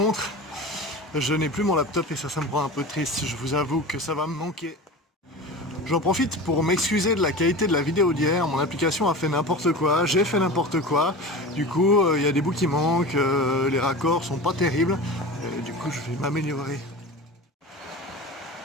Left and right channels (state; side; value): normal; both; correlation 0.32